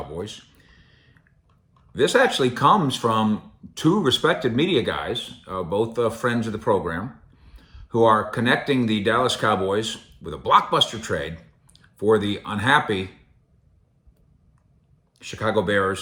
This actually comes from two respected media guys, both friends of the program, who are connecting the Dallas Cowboys with a blockbuster trade for the unhappy Chicago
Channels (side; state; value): both; identical; correlation 1.00